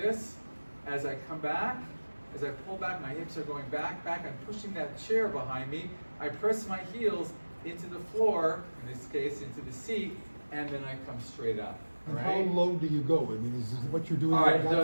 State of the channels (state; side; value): inverted; both; correlation -1.00